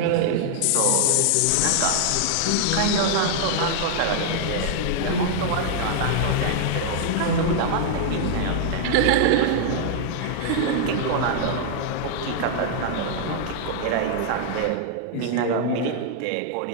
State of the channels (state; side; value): different; both; correlation -0.01